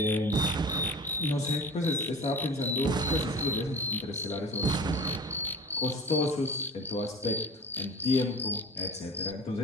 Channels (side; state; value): both; normal; correlation 0.38